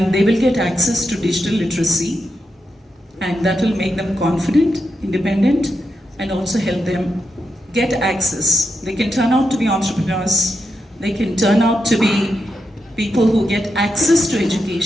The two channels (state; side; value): normal; both; correlation 0.86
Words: they will get access to digital literacy, and that will make them confident, independent, and also help them get access. They can turn out to be entrepreneurs, they can turn out to be people who get access to